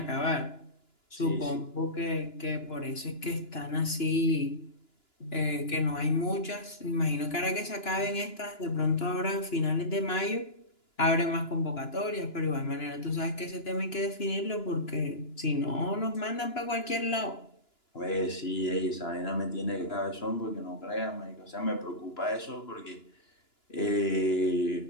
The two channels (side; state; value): right; late; 2.9 ms